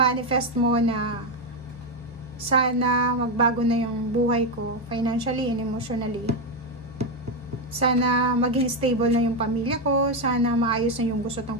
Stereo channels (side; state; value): both; normal; correlation 0.07